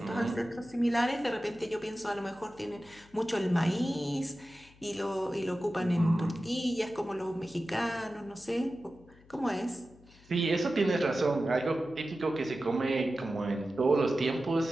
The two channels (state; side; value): noise; left; hum, 26 dB below the sound